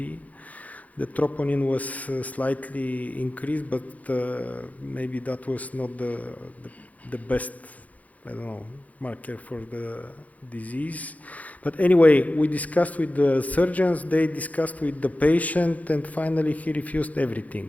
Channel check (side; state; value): right; late; 0.073 ms